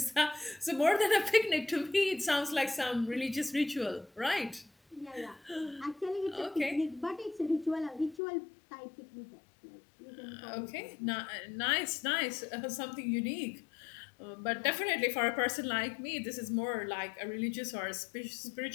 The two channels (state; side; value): drops out; right; at 8.2 s